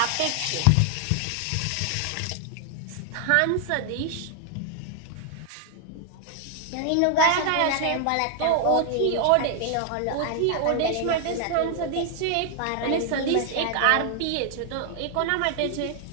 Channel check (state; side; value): different; both; correlation 0.00